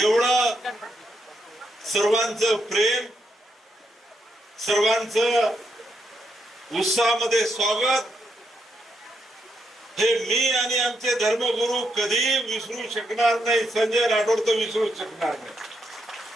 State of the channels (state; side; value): normal; both; correlation 0.80